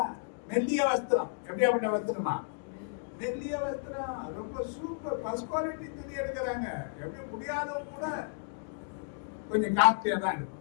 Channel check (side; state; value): right; silent; digital silence